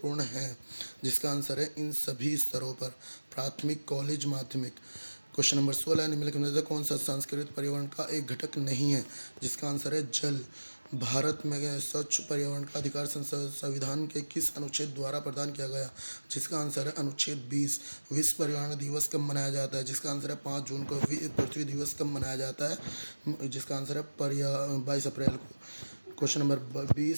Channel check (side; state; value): both; inverted; correlation -1.00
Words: है। जिसका आंसर है इन सभी स्तरों पर, प्राथमिक, कॉलेज, माध्यमिक। क्वेश्चन नंबर 16, निम्नलिखित में से कौन सा संस्कृत पर्यावरण का एक घटक नहीं है? जिसका आंसर है जल। भारत में स्वच्छ पर्यावरण का अधिकार संविधान के किस अनुच्छेद द्वारा प्रदान किया गया? जिसका आंसर है अनुच्छेद 20। विश्व पर्यावरण दिवस कब मनाया जाता है? जिसका आंसर है 5 जून को। पृथ्वी दिवस कब मनाया जाता है? जिसका आंसर है 22 अप्रैल को। क्वेश्चन नंबर